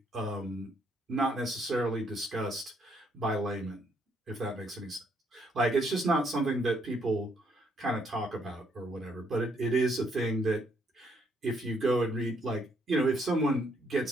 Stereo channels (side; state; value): both; normal; correlation 0.71